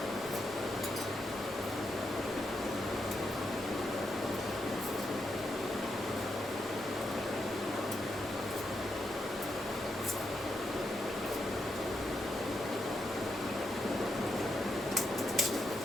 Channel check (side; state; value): both; normal; correlation 0.82